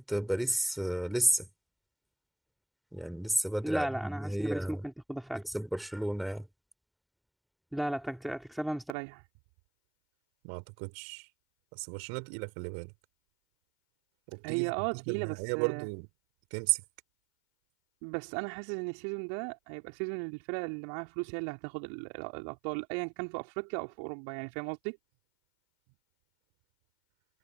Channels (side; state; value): left; drops out; at 9.0 s